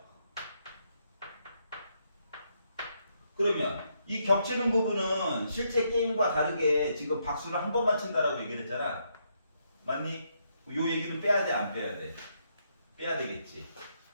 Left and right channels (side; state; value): both; inverted; correlation -0.77